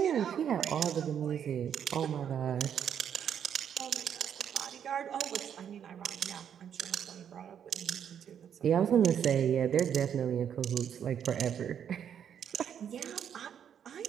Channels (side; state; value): left; quieter; 8.7 dB